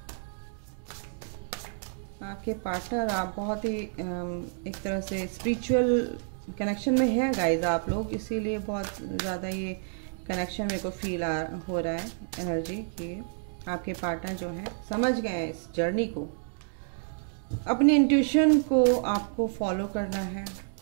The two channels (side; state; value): left; silent; digital silence